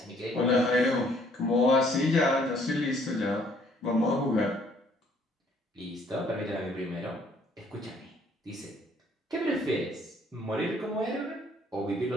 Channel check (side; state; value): both; normal; correlation 0.62